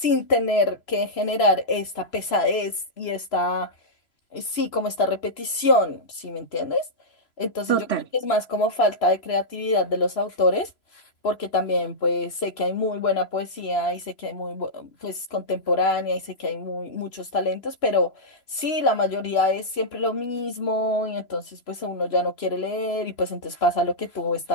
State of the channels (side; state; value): right; late; 3.0 ms